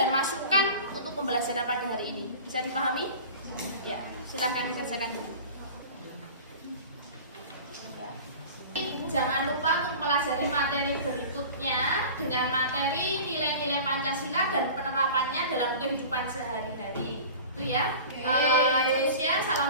masukkan untuk pembelajaran pada hari ini. Bisa dipahami? Ya, silahkan dikerjakan dulu. Jangan lupa untuk mempelajari materi berikutnya dengan materi nilai-nilai Pancasila dan penerapannya dalam kehidupan sehari-hari. Itu ya. Indonesia,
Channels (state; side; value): inverted; both; correlation -0.38